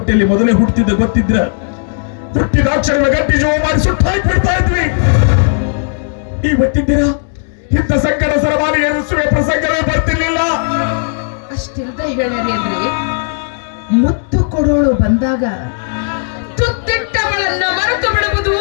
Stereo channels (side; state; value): right; silent; digital silence